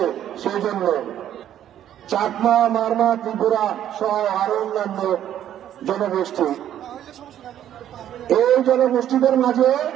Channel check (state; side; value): quieter; left; 11.0 dB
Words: সেই জন্য চাকমা, মারমা, ত্রিপুরা সহ আরো অন্যান্য জনগোষ্ঠী, এই জনগোষ্ঠীদের মাঝে